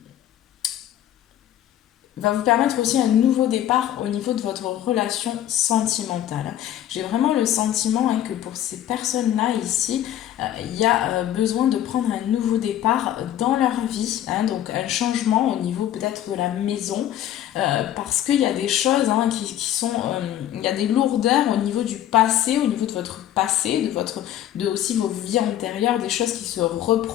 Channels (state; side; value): quieter; right; 11.8 dB